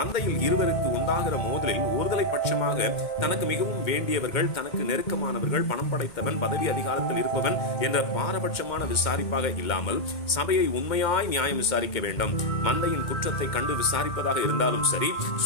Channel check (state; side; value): late; right; 2.2 ms